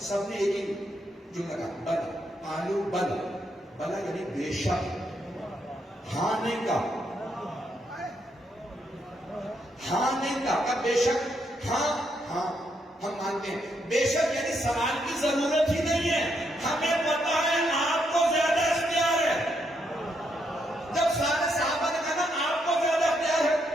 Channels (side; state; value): both; normal; correlation 0.77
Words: سب نے ایک ہی جملہ کہا بل. قالوا بل، بلا یعنی بے شک، ہاں نہیں کا، ہاں نہیں کا بے شک، ہاں ہاں ہم مانتے ہیں. بے شک یعنی سوال کی ضرورت ہی نہیں ہے، ہمیں پتا ہے آپ کو زیادہ اختیار ہے. جب سارے صحابہ نے کہا نا آپ کو زیادہ اختیار ہے،